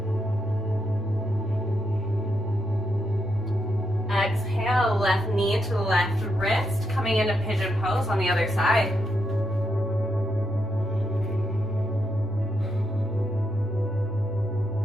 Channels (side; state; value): both; normal; correlation 0.81